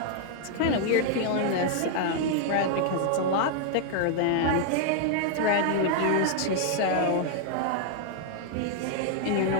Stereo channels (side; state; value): both; different; correlation 0.00